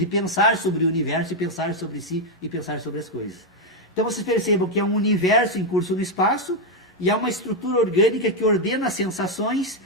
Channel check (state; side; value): normal; both; correlation 0.02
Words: pensar sobre o universo e pensar sobre si e pensar sobre as coisas. Então vocês percebam que é um universo em curso no espaço e é uma estrutura orgânica que ordena as sensações